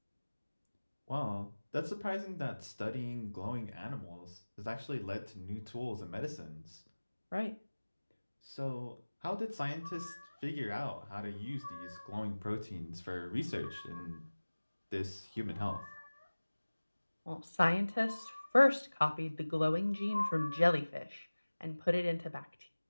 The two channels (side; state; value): both; inverted; correlation -1.00